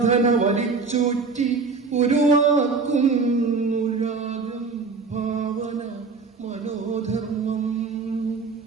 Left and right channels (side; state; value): left; quieter; 4.5 dB